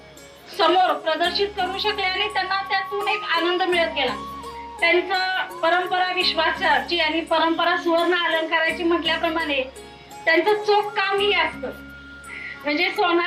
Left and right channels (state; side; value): identical; both; correlation 1.00